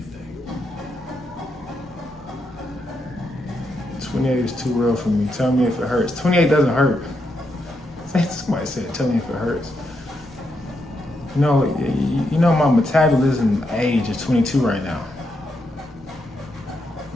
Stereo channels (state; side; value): normal; both; correlation 0.81